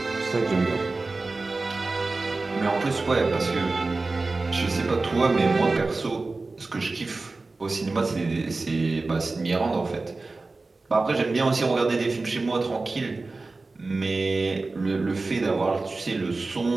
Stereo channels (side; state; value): left; quieter; 3.5 dB